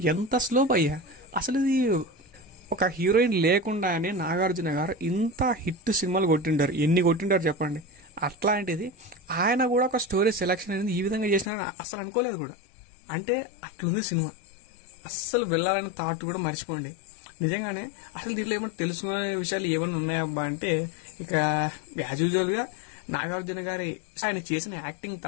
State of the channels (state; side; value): drops out; right; at 11.5 s